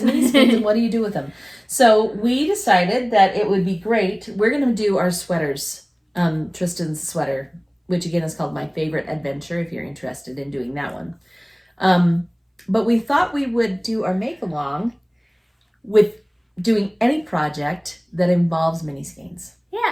mini skeins, and what do you do with them? So we decided that it would be great. We're going to do our sweaters, Trysten's sweater, which again is called My Favorite Adventure, if you're interested in doing that one. But we thought we would do our make-along with doing any project that involves mini skeins.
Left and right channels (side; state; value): both; identical; correlation 1.00